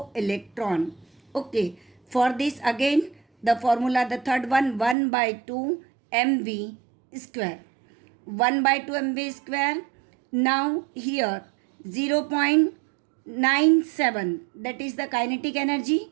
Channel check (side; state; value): left; drops out; at 5.0 s